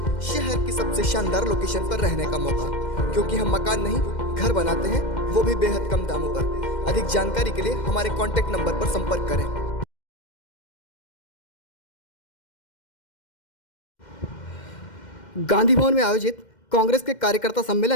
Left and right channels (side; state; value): right; late; 2.1 ms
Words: शहर की सबसे शानदार लोकेशन पर रहने का मौका, क्योंकि हम मकान नहीं घर बनाते हैं, वो भी बेहद कम दामों पर। अधिक जानकारी के लिए हमारे कॉन्टैक्ट नंबर पर संपर्क करें। गांधी भवन में आयोजित कांग्रेस के कार्यकर्ता